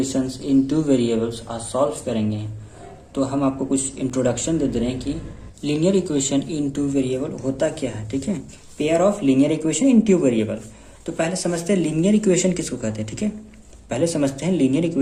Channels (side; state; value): both; identical; correlation 1.00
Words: इन two variables आज solve करेंगे। तो हम आपको कुछ इंट्रोडक्शन दे रहे हैं कि linear equation in two variable होता क्या है। ठीक है, pair of linear equation in two variable. तो पहले समझते हैं लीनियर इक्वेशन किसको कहते हैं। ठीक है, पहले समझते हैं लीनियर